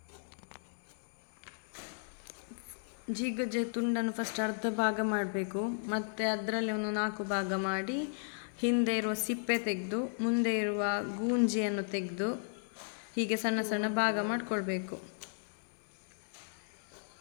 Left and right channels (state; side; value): silent; right; 54 dB below the other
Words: ಜೀಗುಜ್ಜೆ ತುಂಡನ್ನು ಫಸ್ಟ್ ಅರ್ಧ ಭಾಗ ಮಾಡಬೇಕು, ಮತ್ತು ಅದರಲ್ಲಿ ಒಂದು 4 ಭಾಗ ಮಾಡಿ ಹಿಂದೆ ಇರುವ ಸಿಪ್ಪೆ ತೆಗೆದು ಮುಂದೆ ಇರುವ ಗೂಂಜಿಯನ್ನು ತೆಗೆದು ಹೀಗೆ ಸಣ್ಣ ಸಣ್ಣ ಭಾಗ ಮಾಡಿಕೊಳ್ಬೇಕು.